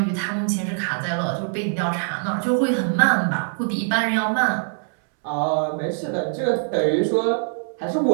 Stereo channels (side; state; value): left; silent; 63 dB below the other